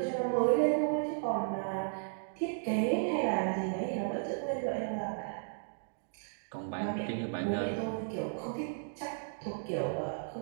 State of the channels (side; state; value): left; silent; digital silence